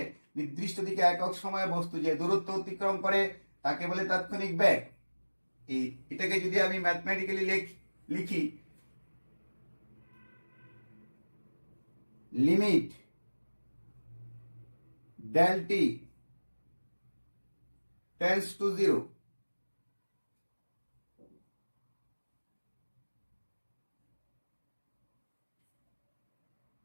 নির্দিষ্ট দিকে একক সময়ে বস্তু যে দূরত্ব অতিক্রম করে তাকে বলে তাৎক্ষণিক বেগ। এটাকে যদি আমি ম্যাথমেটিক্যালি লিখি, limit del t tends to 0,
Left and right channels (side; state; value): both; inverted; correlation -1.00